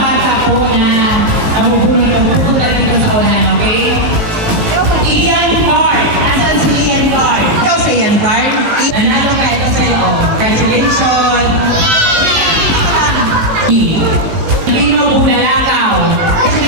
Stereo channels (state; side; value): late; left; 18 ms